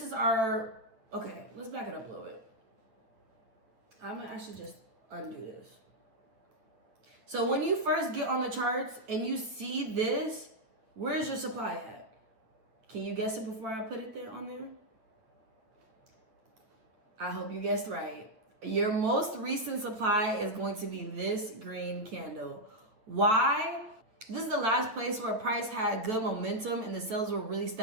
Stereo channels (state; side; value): late; left; 9.3 ms